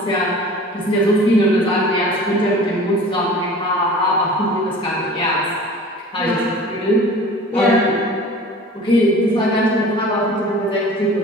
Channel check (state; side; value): normal; both; correlation 0.43